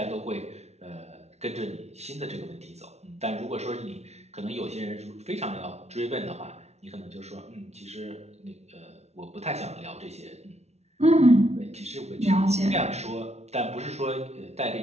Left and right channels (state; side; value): late; left; 0.31 ms